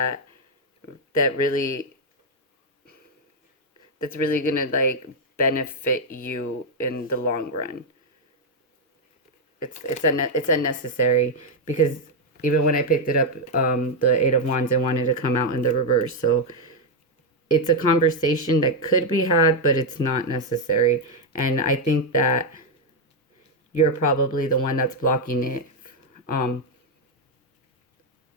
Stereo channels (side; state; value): both; normal; correlation 0.02